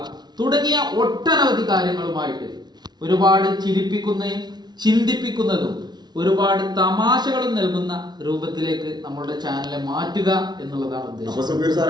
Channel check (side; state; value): left; late; 0.20 ms